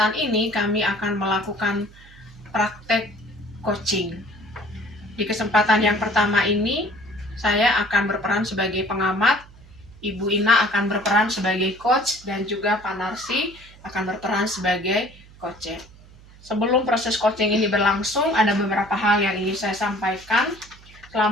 ini, kami akan melakukan praktek coaching. Di kesempatan yang pertama ini, saya akan berperan sebagai pengamat, Ibu Ina akan berperan sebagai coach, dan juga Pak Narsi akan berperan sebagai coach. Sebelum proses coaching ini berlangsung, ada beberapa hal yang ingin saya sampaikan.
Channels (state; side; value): noise; right; hum, 22 dB below the sound